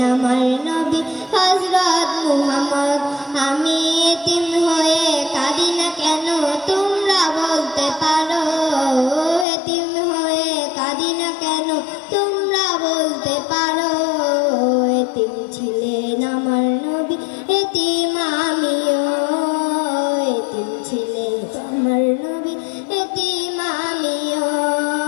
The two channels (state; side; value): drops out; right; at 9.5 s